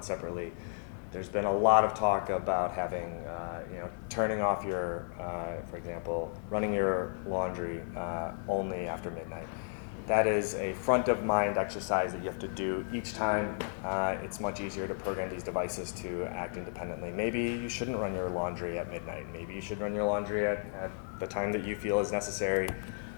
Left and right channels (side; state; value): right; silent; 55 dB below the other